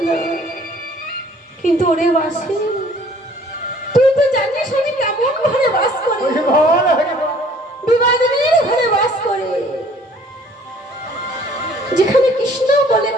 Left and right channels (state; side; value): normal; both; correlation 0.56